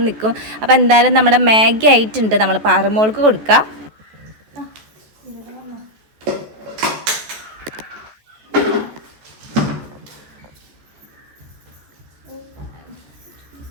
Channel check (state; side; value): late; left; 14 ms